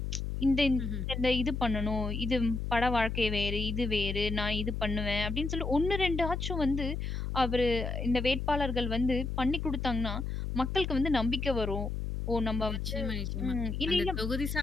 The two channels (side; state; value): left; noise; hum, 3 dB below the sound